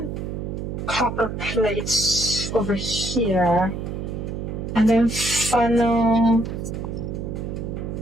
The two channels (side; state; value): right; noise; hum, 5 dB below the sound